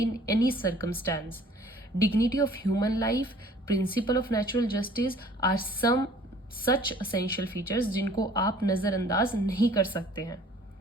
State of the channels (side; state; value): both; normal; correlation 0.53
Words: any circumstance. Dignity of human life, principle of natural justice are some such essential features जिनको आप नज़रअंदाज नहीं कर सकते हैं.